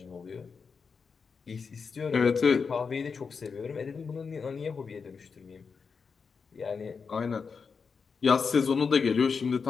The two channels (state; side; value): quieter; right; 5.4 dB